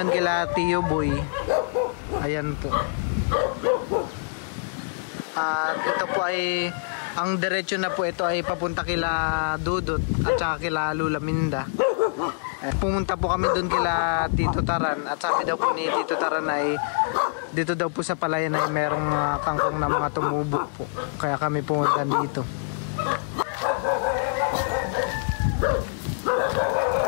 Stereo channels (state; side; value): silent; right; digital silence